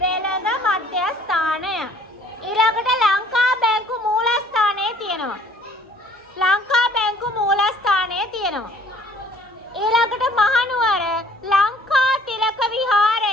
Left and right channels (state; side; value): normal; both; correlation 0.57